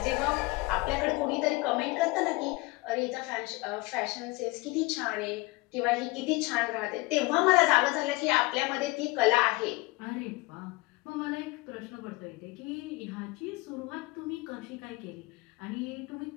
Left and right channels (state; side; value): quieter; right; 23.2 dB